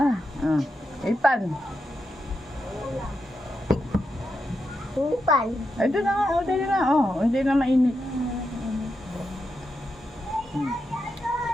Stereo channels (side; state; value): both; normal; correlation 0.86